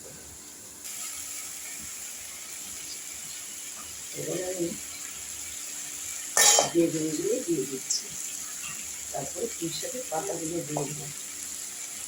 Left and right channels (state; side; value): identical; both; correlation 1.00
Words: এবার আমি বেগুনগুলো দিয়ে দিচ্ছি, তারপরে পুঁই শাকের পাতাগুলো দিয়ে দেবো।